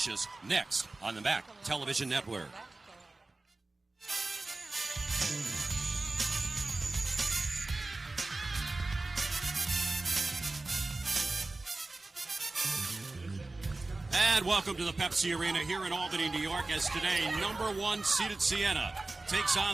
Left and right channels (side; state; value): left; quieter; 3.1 dB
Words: next on the MAAC Television Network. And welcome to the Pepsi Arena here in Albany, New York, as today number 1 seeded Siena takes